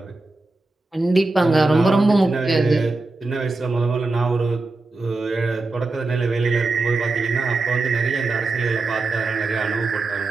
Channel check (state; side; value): quieter; left; 3.3 dB